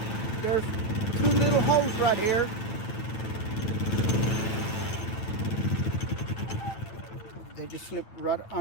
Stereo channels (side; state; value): right; late; 9.1 ms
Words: There's two little holes right here. They just slip right